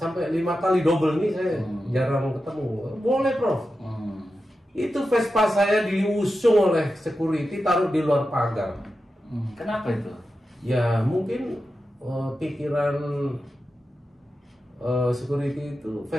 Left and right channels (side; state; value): both; normal; correlation 0.91